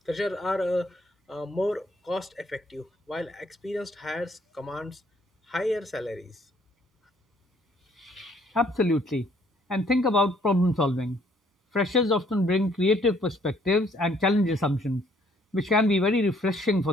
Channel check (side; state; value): both; normal; correlation 0.64